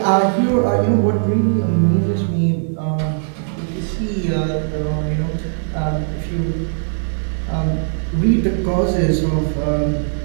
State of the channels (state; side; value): silent; left; digital silence